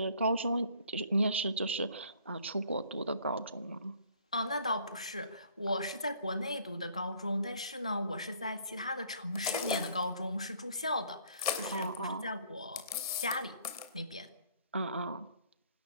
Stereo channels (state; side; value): inverted; both; correlation -0.59